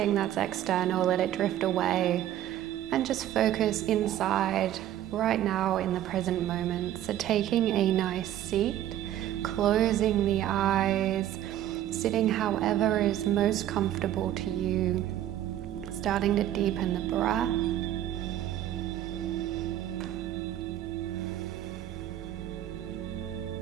that's external, let it drift away, and just focus inside right now in the present moment. So taking a nice seat, closing the eyes, sitting however is most comfortable to you, starting to deepen the breath.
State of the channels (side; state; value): left; quieter; 12.2 dB